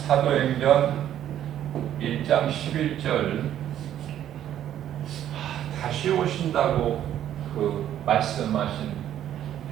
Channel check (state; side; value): quieter; left; 11.1 dB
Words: 1장 11절 다시 오신다고 그 말씀하신